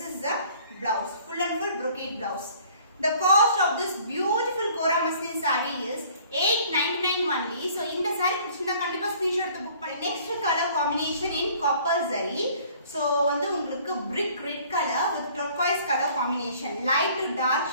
is the blouse, full and full brocade blouse. The cost of this beautiful Kora muslin saree is 899 only. So இந்த saree பிடிச்சிருந்தா கண்டிப்பா ஸ்கிரீன்ஷாட் எடுத்து புக் பண்ணி. Next color combination in copper zari. So வந்து உங்களுக்கு brick red color with turquoise color combination, light to dark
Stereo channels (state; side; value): inverted; both; correlation -0.54